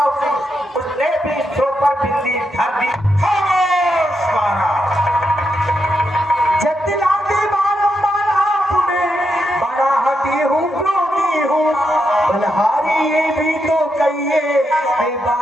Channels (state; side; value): normal; both; correlation 0.83